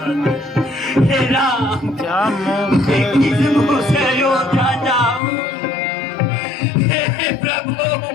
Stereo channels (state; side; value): drops out; right; at 5.2 s